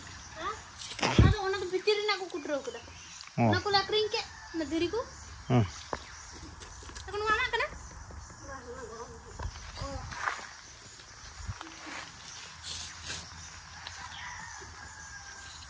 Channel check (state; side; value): identical; both; correlation 1.00